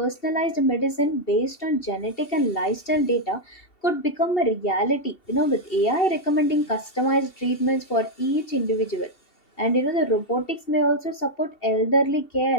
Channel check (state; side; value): late; right; 2.7 ms